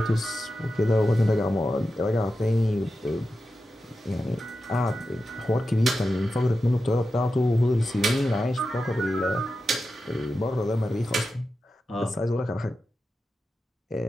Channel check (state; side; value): normal; both; correlation 0.91